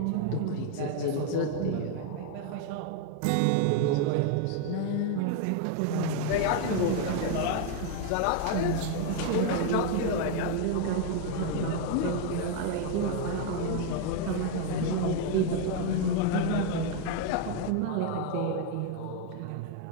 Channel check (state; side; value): different; both; correlation 0.01